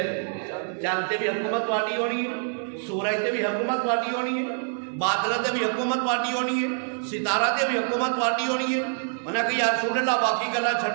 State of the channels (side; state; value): left; silent; digital silence